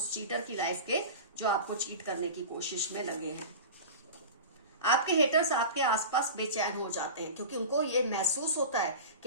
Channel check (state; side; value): inverted; both; correlation -0.31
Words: चीटर की लाइफ के जो आपको चीट करने की कोशिश में लगे हैं। आपके हेटर्स आपके आसपास बेचैन हो जाते हैं, क्योंकि उनको ये महसूस होता है